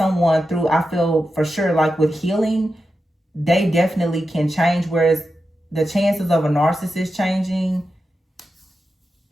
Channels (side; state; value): both; normal; correlation 0.90